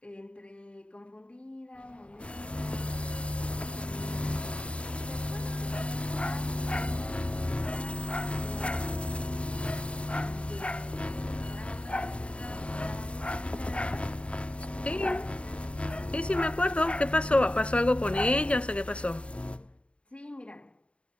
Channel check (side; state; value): right; late; 0.059 ms